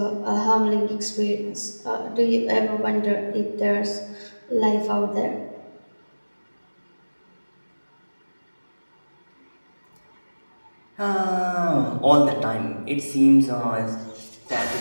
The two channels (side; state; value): both; inverted; correlation -1.00